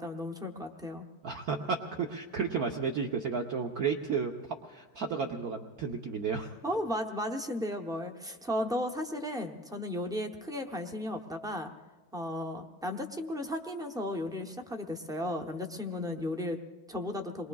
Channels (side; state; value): both; normal; correlation 0.34